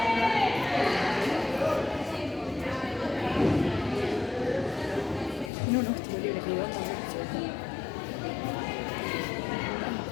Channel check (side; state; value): right; drops out; at 5.5 s